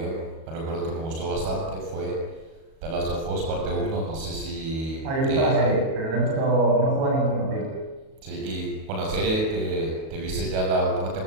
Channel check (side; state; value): left; late; 37 ms